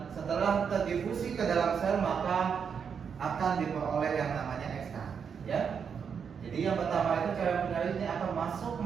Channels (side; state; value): left; quieter; 6.8 dB